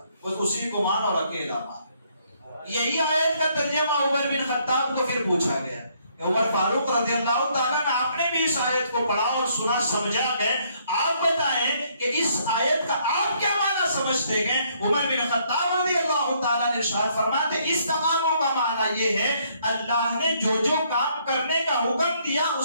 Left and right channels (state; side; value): inverted; both; correlation -0.68